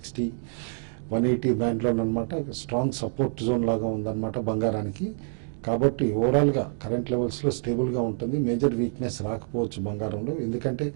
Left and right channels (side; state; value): left; silent; 60 dB below the other